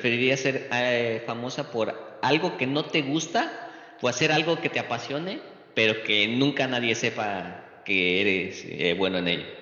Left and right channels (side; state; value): both; identical; correlation 1.00